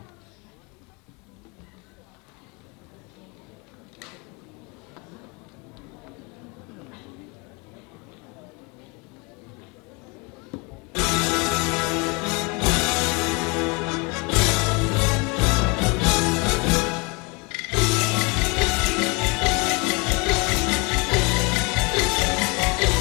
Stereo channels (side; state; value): right; quieter; 29.6 dB